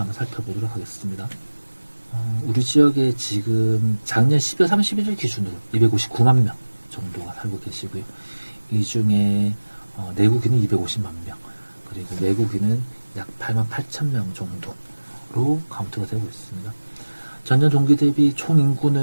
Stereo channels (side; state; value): both; inverted; correlation -1.00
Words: 살펴보도록 하겠습니다. 우리 지역에 지금 작년 12월 31일 기준으로 259만 명 정도가 살고 계시고요. 이 중에 내국인은 250만 명, 그리고 외국인은 약 8만 8천 명 정도로 카운트가 되고 있습니다. 전년 동기 대비 총